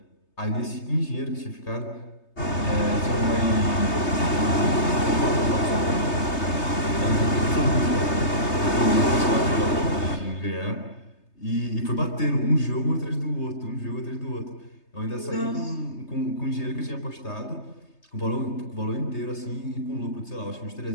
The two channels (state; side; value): late; right; 3.3 ms